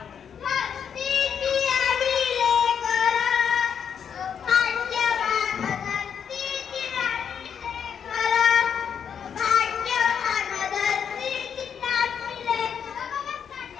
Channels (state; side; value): quieter; right; 7.7 dB